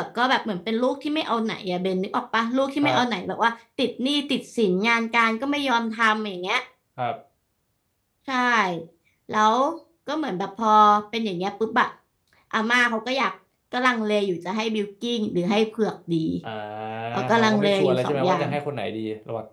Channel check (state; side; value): identical; both; correlation 1.00